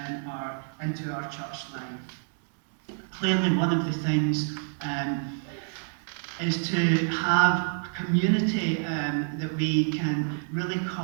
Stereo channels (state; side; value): silent; left; digital silence